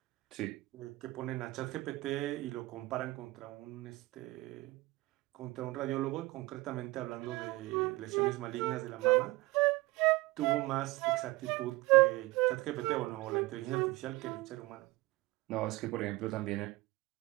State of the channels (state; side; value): quieter; left; 20.9 dB